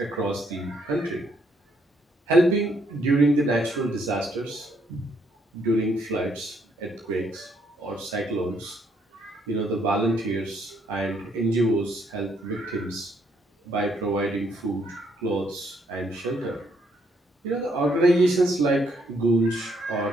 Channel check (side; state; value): both; normal; correlation 0.71